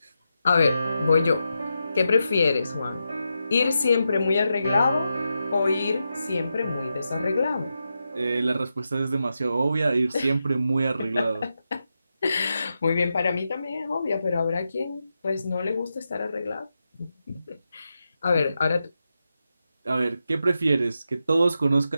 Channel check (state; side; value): inverted; both; correlation -0.88